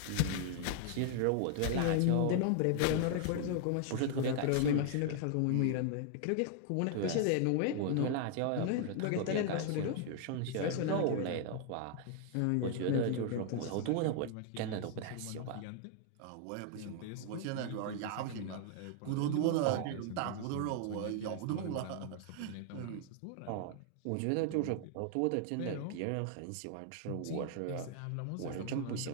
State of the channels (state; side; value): different; both; correlation 0.00